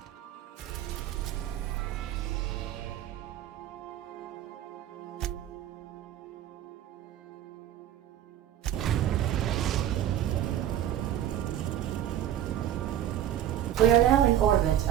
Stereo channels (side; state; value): left; quieter; 11.3 dB